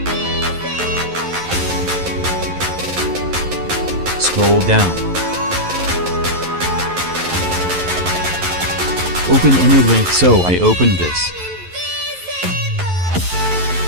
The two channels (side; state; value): left; late; 11 ms